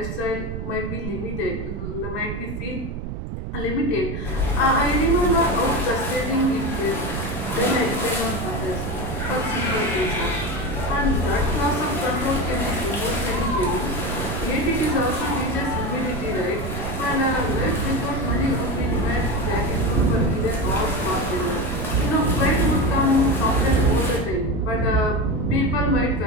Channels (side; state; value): right; noise; rumble, 6 dB below the sound